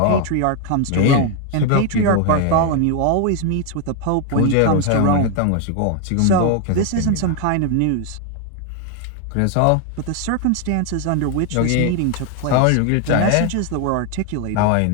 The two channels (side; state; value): both; different; correlation 0.01